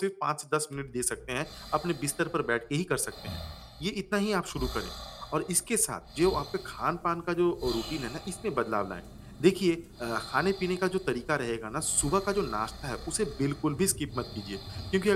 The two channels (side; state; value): both; identical; correlation 1.00